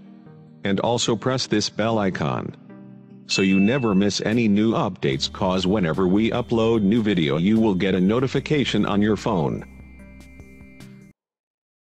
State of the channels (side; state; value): both; identical; correlation 1.00